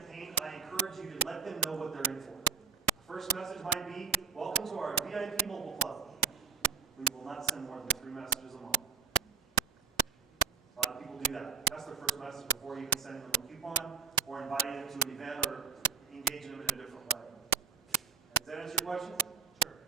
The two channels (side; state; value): left; quieter; 5.8 dB